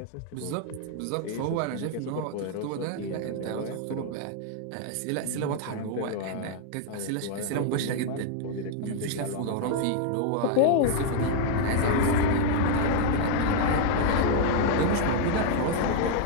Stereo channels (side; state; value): both; different; correlation 0.00